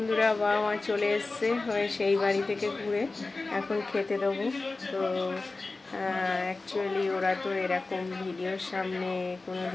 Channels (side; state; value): right; quieter; 3.5 dB